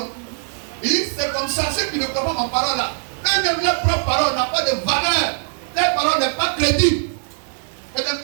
Il dit, c'est comme ça, ceux qui ne croient pas ma parole là. Eux-mêmes, leur propre parole n'a pas de valeur. Leur parole n'est pas crédible. C'est des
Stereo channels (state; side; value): silent; left; digital silence